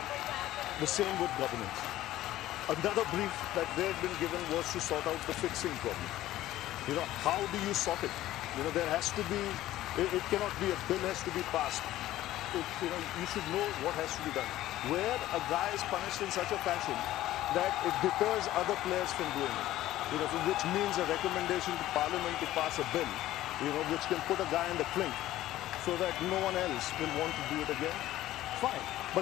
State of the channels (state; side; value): quieter; right; 14.7 dB